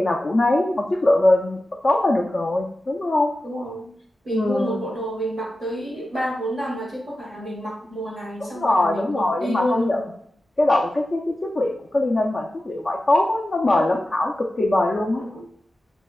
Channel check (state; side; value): normal; both; correlation 0.93